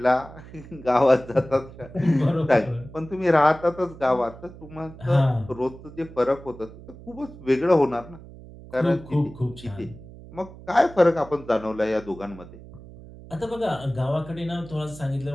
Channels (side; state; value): right; noise; hum, 17 dB below the sound